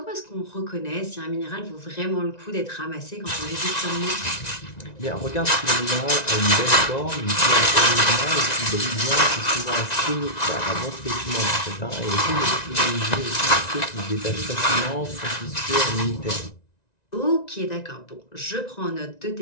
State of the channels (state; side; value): late; right; 1.9 ms